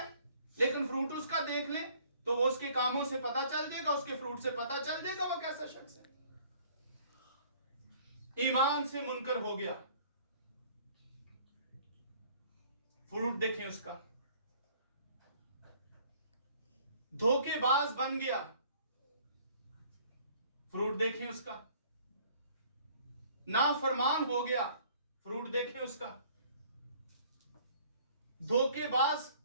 लेकिन फ्रूट उसका देख ले तो वो उसके कामों से पता चल जाएगा, उसके फ्रूट से पता चल जाएगा वो कैसा शख्स है। ईमान से मुनकर हो गया, फ्रूट देखें उसका। धोखेबाज बन गया, फ्रूट देखें उसका। नाफरमान हो गया, फ्रूट देखें उसका। धोखेबाज,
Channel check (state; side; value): inverted; both; correlation -0.56